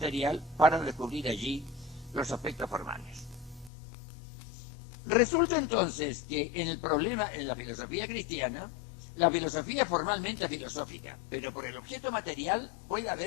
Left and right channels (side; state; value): right; drops out; at 3.7 s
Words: para descubrir allí los aspectos formales. Resulta entonces que en el problema, en la filosofía cristiana, la filosofía es formalmente filosófica, pero por el objeto material puede